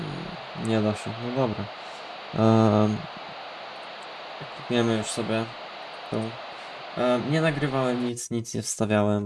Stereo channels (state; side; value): identical; both; correlation 1.00